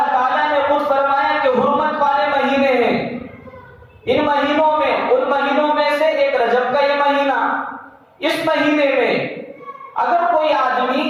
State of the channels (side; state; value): both; identical; correlation 1.00